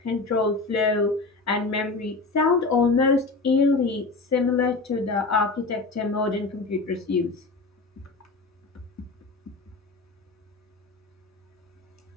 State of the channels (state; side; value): quieter; right; 3.6 dB